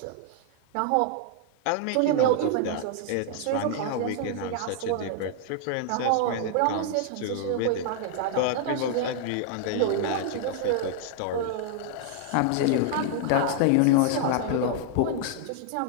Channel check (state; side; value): different; both; correlation -0.01